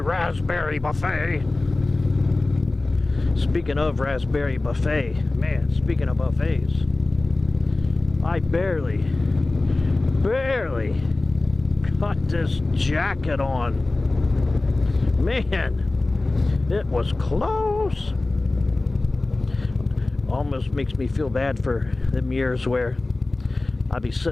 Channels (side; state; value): right; quieter; 3.1 dB